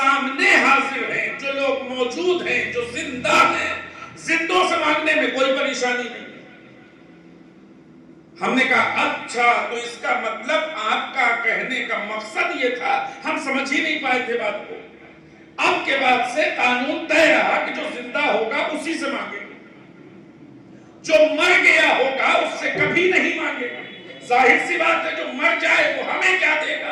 حاضر ہیں، جو لوگ موجود ہیں، جو زندہ ہیں، زندوں سے مانگنے میں کوئی پریشانی نہیں. ہم نے کہا اچھا، تو اس کا مطلب آپ کا کہنے کا مقصد یہ تھا، ہم سمجھ ہی نہیں پائے تھے بات کو. اب کے بعد سے قانون طے رہا کہ جو زندہ ہوگا اسی سے مانگے گا، جو مر گیا ہوگا اس سے کبھی نہیں مانگے گا. ظاہر سی بات ہے، جو مر جائے وہ ہمیں کیا دے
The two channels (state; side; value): identical; both; correlation 1.00